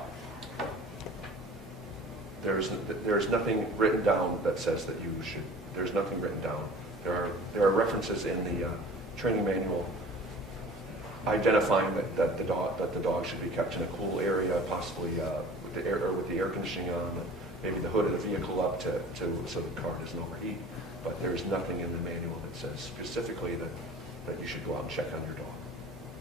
There's nothing written down that says that you should. There's nothing written down. There are references in the training manual identifying that the dog should be kept in a cool area, possibly with the air conditioning on, maybe the hood of the vehicle up so the car doesn't overheat. But there's nothing in the manual that says specifically that you should go out and check on your dog.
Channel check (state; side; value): normal; both; correlation 0.43